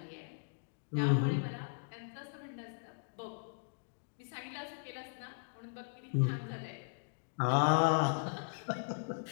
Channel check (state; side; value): silent; right; digital silence